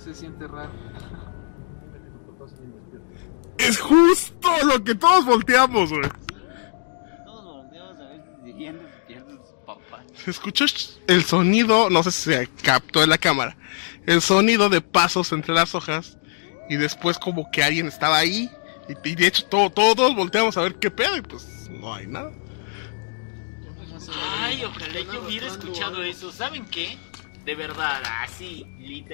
se siente raro. Es justo lo que todos volteamos, güey. Todos volteamos a ver si seguían despiertos sus papás. Se escuchó el sonido, no sé si se captó en la cámara, el sonido de pasos entre las hojas y después como que alguien estaba ahí y de hecho todos volteamos a ver qué pedo y pues no hay nada. Ay, ojalá yo hubiera escuchado eso. ¿Saben qué? De verdad, así,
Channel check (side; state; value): right; silent; digital silence